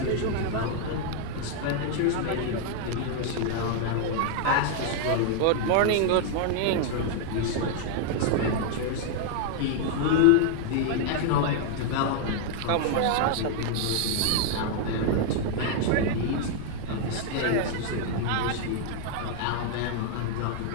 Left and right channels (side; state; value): both; different; correlation 0.00